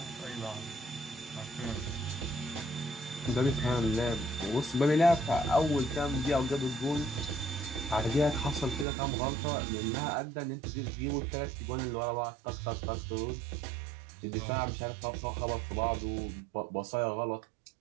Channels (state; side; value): drops out; left; at 8.8 s